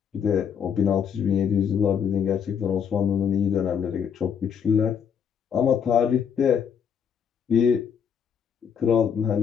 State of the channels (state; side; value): quieter; right; 7.5 dB